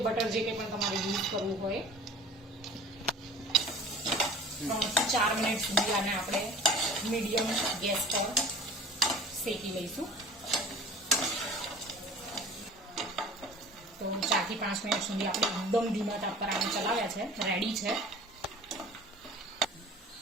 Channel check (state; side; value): normal; both; correlation 0.43